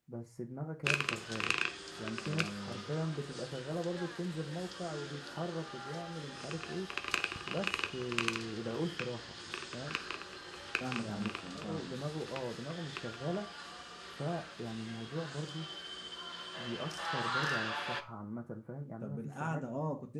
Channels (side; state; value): both; identical; correlation 1.00